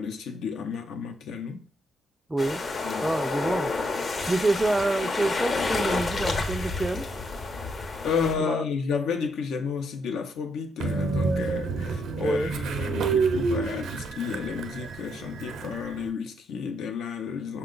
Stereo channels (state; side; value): normal; both; correlation 0.76